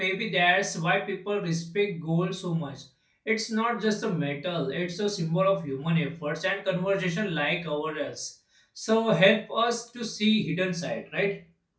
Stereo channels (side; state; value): both; identical; correlation 1.00